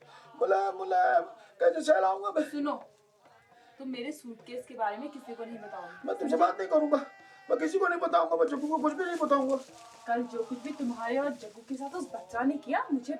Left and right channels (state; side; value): identical; both; correlation 1.00